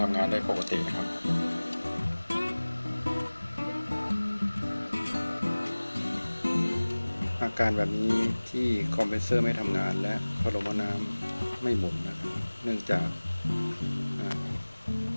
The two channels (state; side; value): inverted; both; correlation -1.00